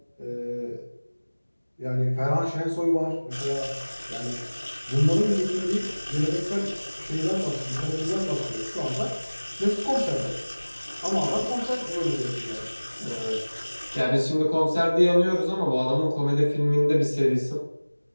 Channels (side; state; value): both; inverted; correlation -1.00